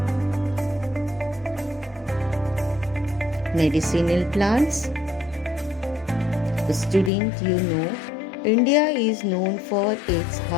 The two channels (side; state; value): right; drops out; at 7.1 s